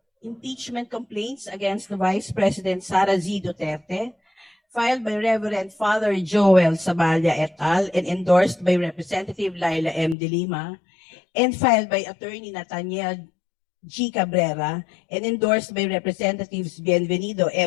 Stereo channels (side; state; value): right; drops out; at 10.2 s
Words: Impeachment complaints against the Vice President Sara Z. Duterte, filed by Reverend Father Joel Saballa et al. And endorsed by Representative Laila M. De Lima, and filed by Attorney Nathaniel G. Cabrera, and endorsed by Representatives Bienvenido